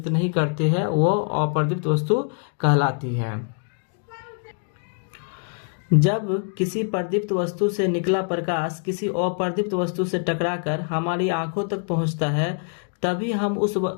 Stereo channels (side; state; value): right; silent; 57 dB below the other